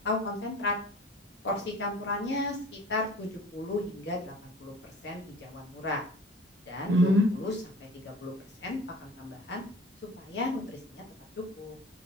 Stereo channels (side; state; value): both; normal; correlation 0.43